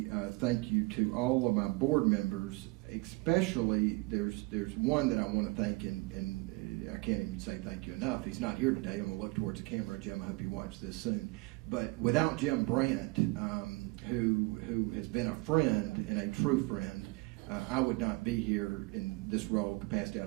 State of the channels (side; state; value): left; quieter; 24.8 dB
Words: thank you to all of my board members. Especially, there's one that I want to thank, and I can't even say thank you enough. He's not here today. I'm going to look towards the camera. Jim, I hope you watch this soon. But without Jim Brandt, who has been a friend and a true friend, I would not be here in this role capacity.